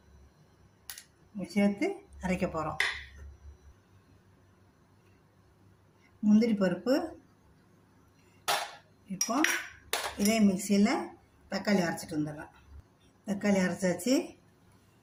சேர்த்து அரைக்க போகிறோம். முந்திரி பருப்பு இப்போ இதே மிக்சியில் தக்காளி அரைச்சிட்டு வந்துடலாம். தக்காளி அரைச்சாச்சு.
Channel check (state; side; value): identical; both; correlation 1.00